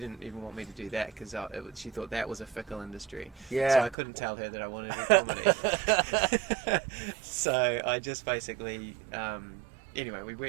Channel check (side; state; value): left; drops out; at 4.0 s